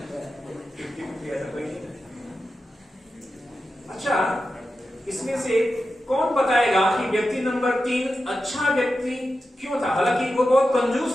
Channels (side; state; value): both; normal; correlation 0.91